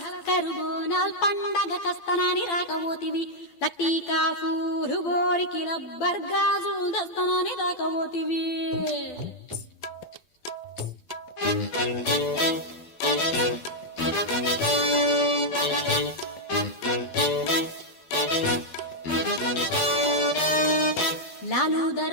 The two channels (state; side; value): late; right; 12 ms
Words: కరుబోనాల్ పండగ కస్తనాని రాకబోతివి లట్టీకా పూలు గోరికి లబ్బర్ గాజులు దస్తనాని రాకబోతివి లాలు